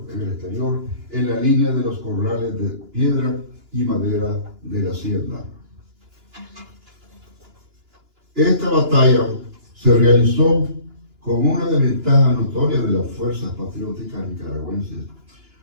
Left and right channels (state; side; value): late; left; 2.9 ms